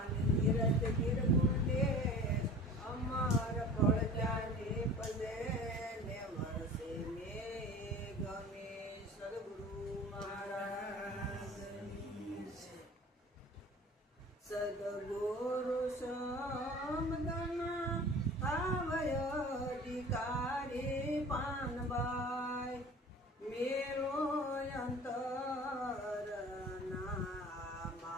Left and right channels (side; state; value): both; normal; correlation 0.42